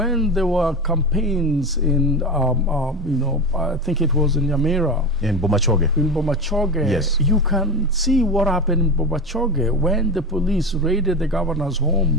there were campaigns in, I think it was in Nyamira. In Bomachoge. In Bomachoge. Yes. You can see what happened in Bomachoge when the police raided the governor's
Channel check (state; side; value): normal; both; correlation 0.23